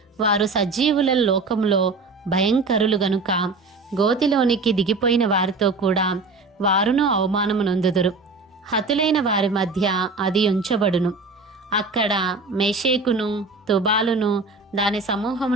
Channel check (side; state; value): left; quieter; 3.8 dB